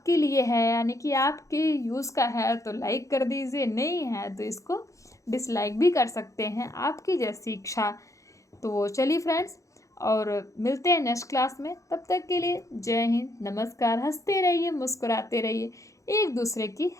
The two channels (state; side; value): late; right; 0.15 ms